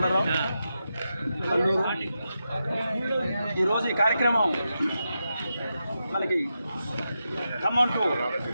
కల్లూరు. ఈరోజు ఈ కార్యక్రమం మనకి ఖమ్మం టు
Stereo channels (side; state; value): both; inverted; correlation -0.88